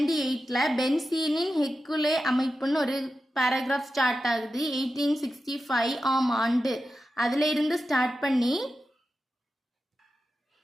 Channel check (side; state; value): both; normal; correlation 0.91